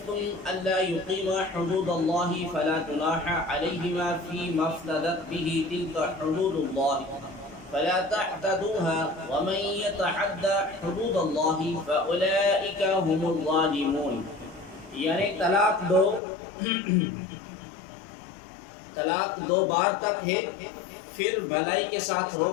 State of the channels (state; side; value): drops out; right; at 16.2 s